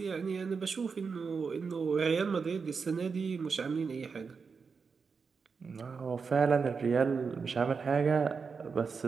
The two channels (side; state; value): left; quieter; 5.3 dB